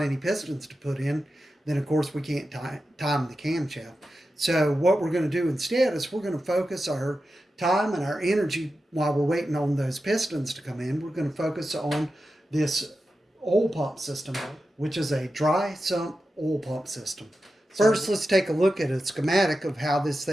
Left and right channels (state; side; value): normal; both; correlation 0.91